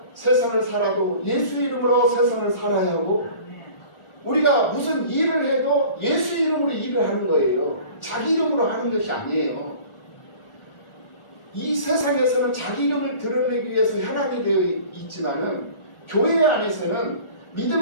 세상을 살아도 예수 이름으로 세상을 살아야 하고 우리가 무슨 일을 해도 예수 이름으로 일을 하는 거예요. 자기 이름으로 하는 것이 아니에요. 이 세상에서는 자기 이름을 드러내기 위해서 현황이 되어 있지만은 교회 안에서는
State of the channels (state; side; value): late; right; 1.4 ms